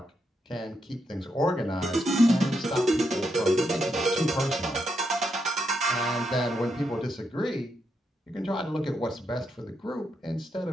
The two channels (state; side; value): normal; both; correlation 0.82